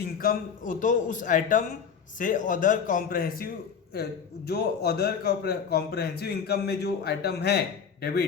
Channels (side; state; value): right; quieter; 6.8 dB